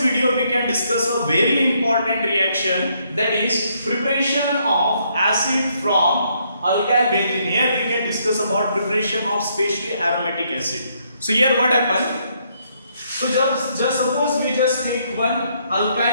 we can discuss a very important reaction, that is preparation of acid from alkyl benzene. Here we can discuss about preparation of specially aromatic acid. So here what happened? So just suppose we just take one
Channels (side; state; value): both; inverted; correlation -0.72